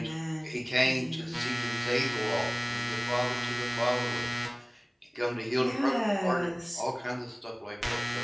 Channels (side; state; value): both; identical; correlation 1.00